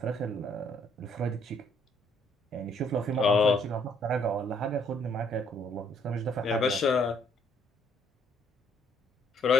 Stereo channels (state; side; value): normal; both; correlation 0.66